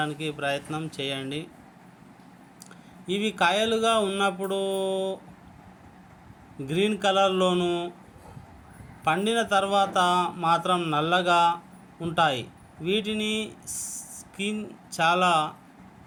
ప్రయత్నం చేయండి. ఇవి కాయలుగా ఉన్నప్పుడు గ్రీన్ కలర్లోను, పండిన తర్వాత మాత్రం నల్లగా ఉంటాయి. వీటిని స్కిన్ చాలా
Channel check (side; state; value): both; identical; correlation 1.00